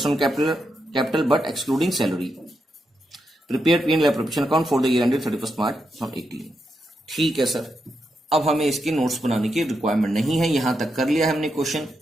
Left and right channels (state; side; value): normal; both; correlation 0.84